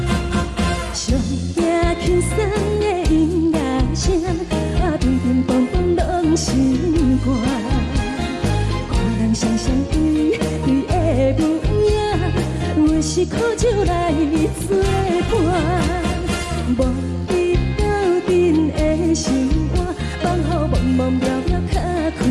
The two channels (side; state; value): both; identical; correlation 1.00